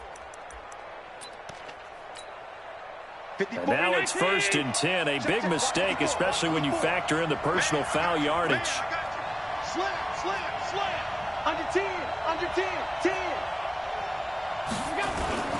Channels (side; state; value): both; identical; correlation 1.00